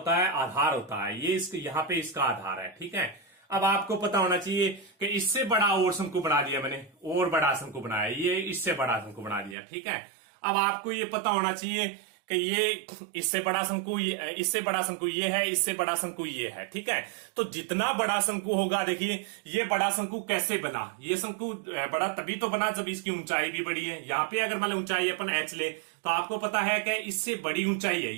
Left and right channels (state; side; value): drops out; left; at 9.6 s